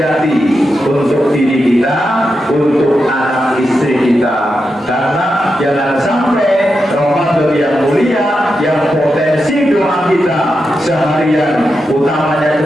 untuk diri kita, untuk anak istri kita, karena jangan sampai Ramadan yang mulia, yang potensi doa kita seharian, utamanya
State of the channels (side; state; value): both; normal; correlation 0.87